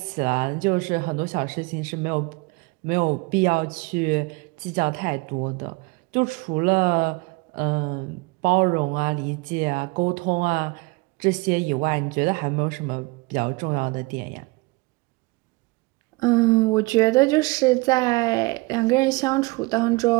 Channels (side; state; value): left; quieter; 25.5 dB